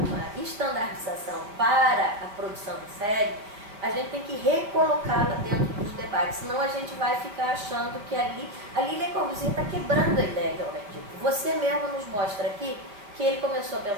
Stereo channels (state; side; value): late; left; 4.9 ms